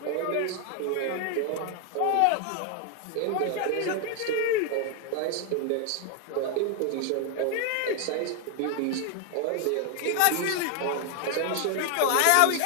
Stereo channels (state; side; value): different; both; correlation 0.01